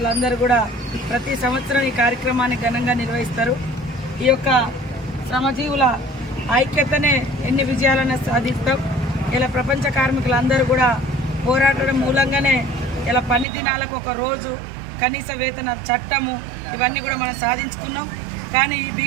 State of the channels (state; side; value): drops out; left; at 13.5 s